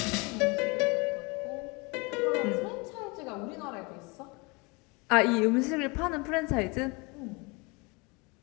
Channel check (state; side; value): quieter; right; 27.9 dB